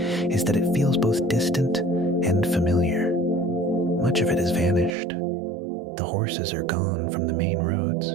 is that it feels both distant and familiar. Much of it has vanished. The horses are gone from the main roads.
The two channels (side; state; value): left; drops out; at 5.0 s